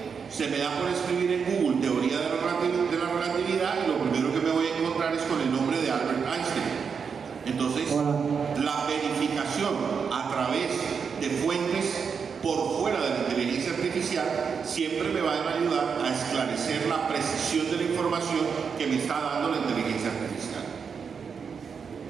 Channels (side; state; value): left; quieter; 6.1 dB